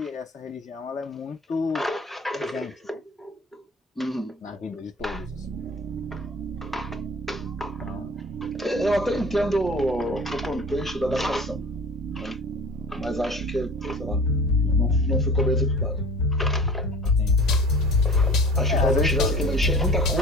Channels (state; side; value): normal; both; correlation 0.43